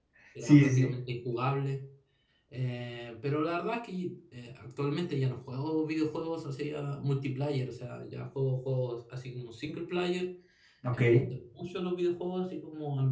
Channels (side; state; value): both; identical; correlation 1.00